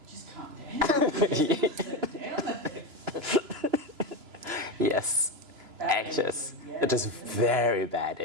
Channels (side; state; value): left; late; 3.0 ms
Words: just calm down. Sit down. Yes. Anxious. It is very bad